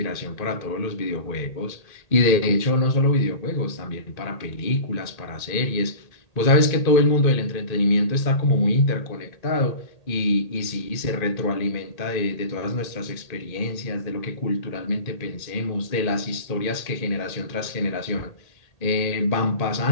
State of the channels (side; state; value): right; late; 1.8 ms